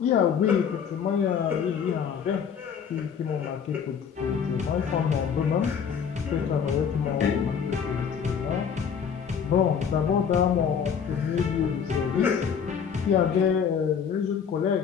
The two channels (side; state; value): right; quieter; 7.2 dB